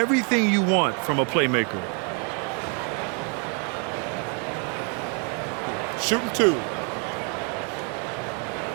you want from a playmaker. Shooting 2.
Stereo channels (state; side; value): quieter; left; 37.6 dB